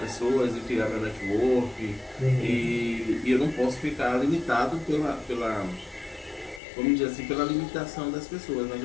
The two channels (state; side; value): drops out; right; at 6.6 s